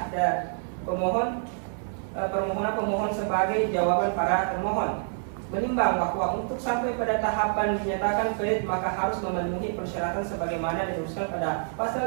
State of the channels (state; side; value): silent; left; 60 dB below the other